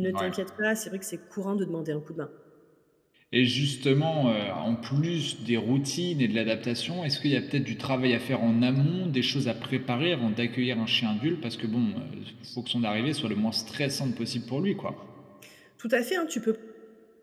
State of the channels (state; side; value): identical; both; correlation 1.00